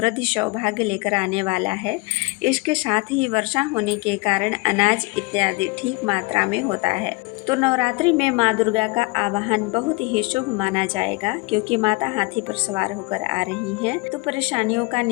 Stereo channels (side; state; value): right; quieter; 26.2 dB